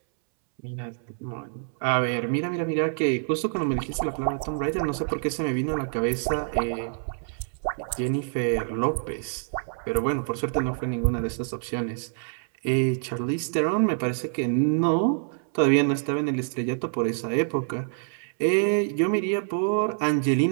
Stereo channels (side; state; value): left; silent; 61 dB below the other